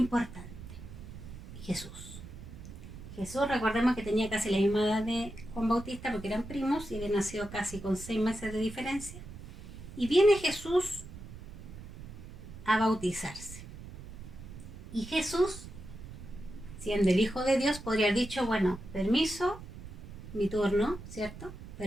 Jesús. Jesús, recordemos que tenía casi la misma edad de Juan Bautista porque eran primos y había nacido casi con 6 meses de diferencia. Y viene Jesús a bautizarse. Y Jesús, siendo el Hijo de Dios, podría haber dicho, bueno, permiso, mi turno, ¿cierto?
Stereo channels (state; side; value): noise; right; rumble, 13 dB below the sound